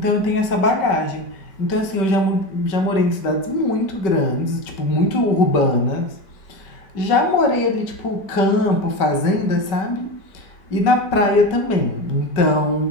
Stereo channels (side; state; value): right; late; 5.2 ms